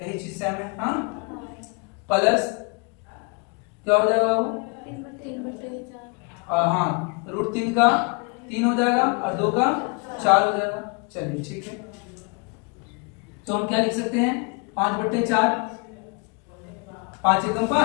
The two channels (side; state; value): right; quieter; 33.4 dB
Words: यही चीज सेम है, हाँ, प्लस क्या हो जाएगा बाबू, हाँ, √3 का 3 हो जाएगा और 2 का 4 हो जाएगा। चलिए ठीक है, तो हम क्या लिख सकते हैं, 5/4, 5 एकम